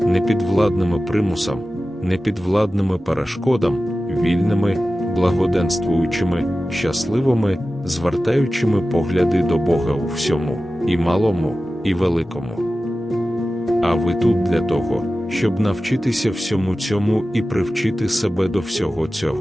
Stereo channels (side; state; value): both; normal; correlation 0.95